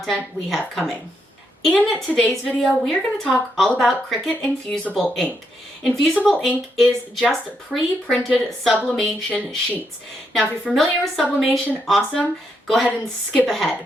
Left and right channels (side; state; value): both; normal; correlation 0.79